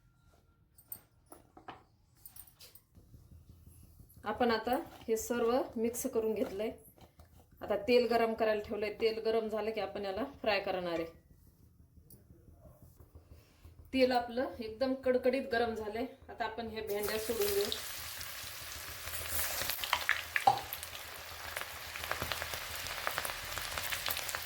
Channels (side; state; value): both; identical; correlation 1.00